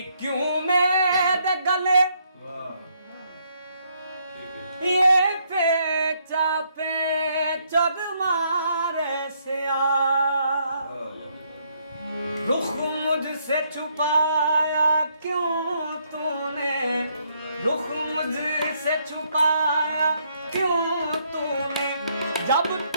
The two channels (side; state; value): both; inverted; correlation -0.72